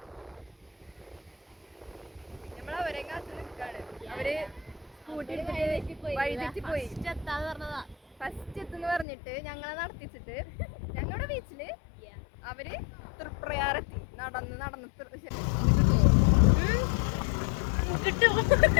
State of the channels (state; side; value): drops out; right; at 9.1 s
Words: നമ്മളവരെ കാത്ത് നിൽക്കാണ്. അവര് സ്കൂട്ടി വഴിതെറ്റി പോയി. ഫസ്റ്റ് എത്തുന്ന് പറഞ്ഞിട്ട് ഞങ്ങളെ നടത്തിച്ചിട്ട് ഞങ്ങളുടെ ബീച്ചില് അവര് തൃപ്രയാറെത്തി. നടന്ന്